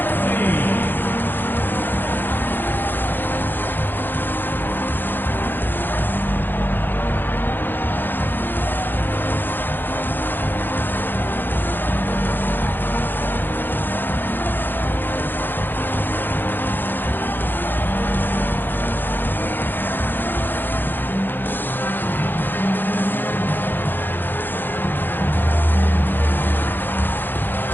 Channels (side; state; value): right; late; 0.094 ms